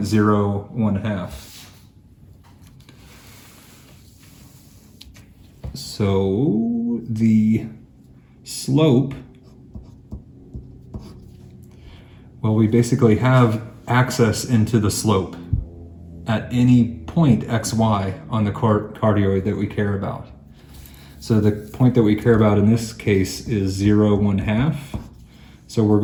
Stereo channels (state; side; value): identical; both; correlation 1.00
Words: 0, 1/2. So the slope, well, we basically have access into the slope at any point xy on the cardioid that we care about. So the point that we care about in this case is 0, 1/2. So we're